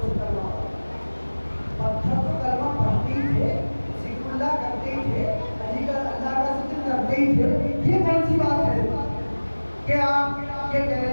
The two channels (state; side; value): inverted; both; correlation -1.00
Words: سے کلمہ پڑھا؟ پتھر تو کلمہ پڑھتے ہی تھے، ذکر اللہ کرتے ہی تھے، اللہ کا ذکر کرتے ہی تھے، یہ کون سی بات ہے کہ آپ یہ کہہ رہے